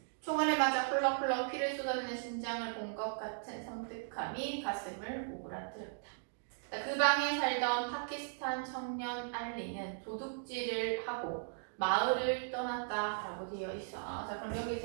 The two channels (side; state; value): left; silent; digital silence